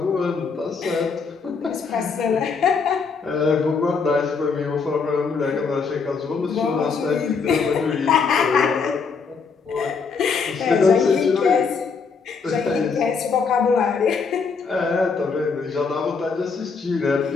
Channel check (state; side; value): quieter; right; 5.2 dB